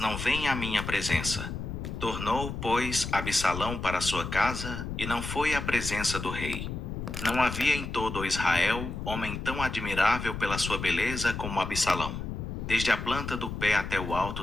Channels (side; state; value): left; noise; rumble, 6 dB below the sound